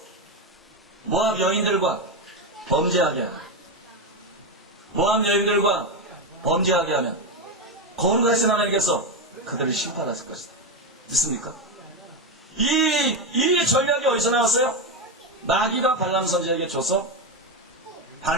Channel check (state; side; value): normal; both; correlation 0.11